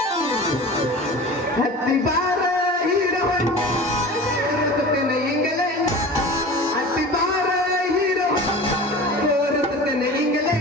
ಹತ್ತಿ ಬಾರ ಹೀರವನು ತೋರಿಸುತ್ತೇನೆ ಹಿಂಗಲೇ ಹತ್ತಿ ಬಾರ ಹೀರವನು ತೋರಿಸುತ್ತೇನೆ ಹಿಂಗಲೇ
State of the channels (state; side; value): normal; both; correlation 0.36